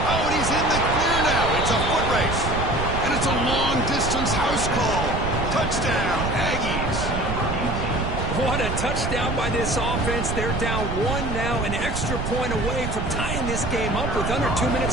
Oh, and he's in the clear now. It's a foot race. And it's a long-distance house call. Touchdown, Aggies. What a touchdown by this offense. They're down 1 now, an extra point away from tying this game up with under 2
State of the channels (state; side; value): noise; right; rumble, 3 dB below the sound